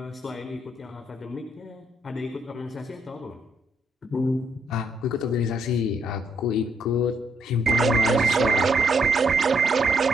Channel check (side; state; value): both; normal; correlation 0.74